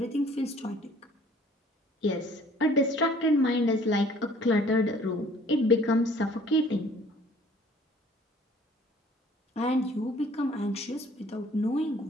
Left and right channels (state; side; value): normal; both; correlation 0.55